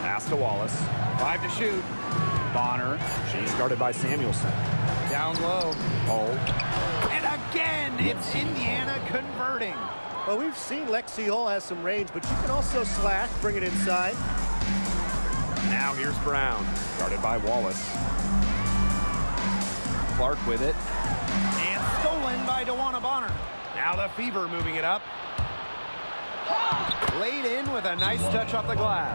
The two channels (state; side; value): inverted; both; correlation -1.00